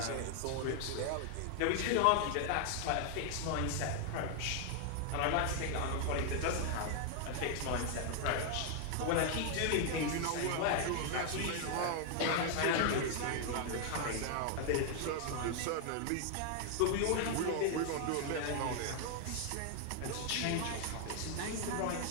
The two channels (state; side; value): different; both; correlation 0.00